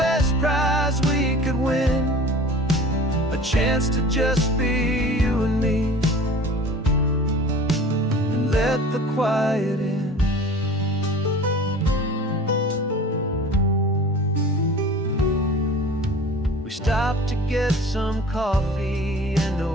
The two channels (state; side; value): normal; both; correlation 0.42